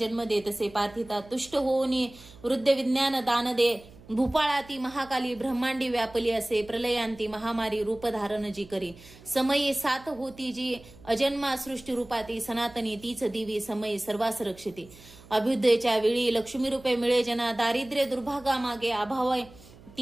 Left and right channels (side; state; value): right; noise; hum, 22 dB below the sound